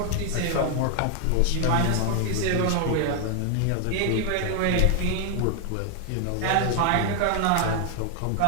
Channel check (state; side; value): different; both; correlation 0.00